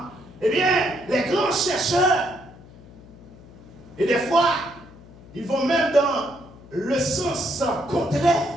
eh bien, les grands chercheurs, et des fois, ils vont même dans le sens contraire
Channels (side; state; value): left; noise; hum, 21 dB below the sound